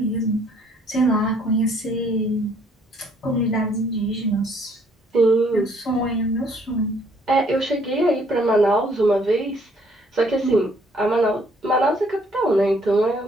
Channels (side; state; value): both; normal; correlation 0.64